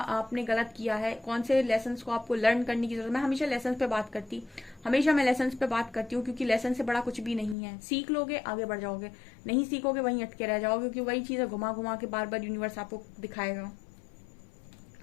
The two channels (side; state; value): right; drops out; at 7.6 s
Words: गलत किया है, कौन से लेसन्स को आपको लर्न करने की जरूरत है। मैं हमेशा लेसन्स पे बात करती हूँ, क्योंकि लेसन से बड़ा कुछ भी नहीं है। सीख लोगे आगे बढ़ जाओगे, नहीं सीखोगे वहीं अटके रह जाओगे, क्योंकि वही चीजें घुमा घुमा के बार बार यूनिवर्स आपको दिखाएगा।